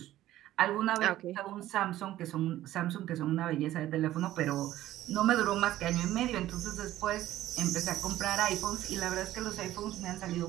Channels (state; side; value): quieter; left; 14.2 dB